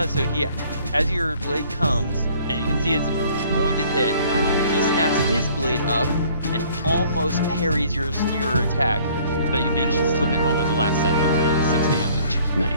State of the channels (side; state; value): both; inverted; correlation -0.56